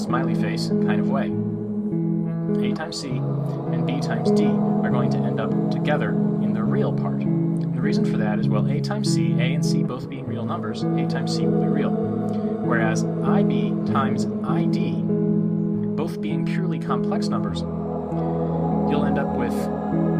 face kind of way. A times c and b times d are going to end up together in the real part. And the reason for that is, well, a times c, a and c both being real numbers, a times c will be real. Whereas ib times id, both being purely complex numbers, you'll end up with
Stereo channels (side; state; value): both; identical; correlation 1.00